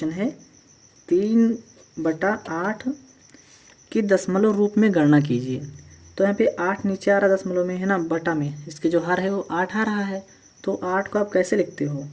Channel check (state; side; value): identical; both; correlation 1.00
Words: है 3/8 की दशमलव रूप में गणना कीजिए। तो यहाँ पे 8 नीचे आ रहा दशमलव में है ना, बटा में इसके जो हर है वो 8 आ रहा है। तो 8 को आप कैसे लिखते हो?